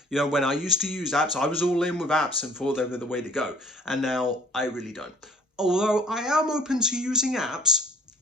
When I used to use apps, I was all in with apps and thought they were the way to go. And now I really don't. Although I am open to using apps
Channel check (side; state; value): both; normal; correlation 0.53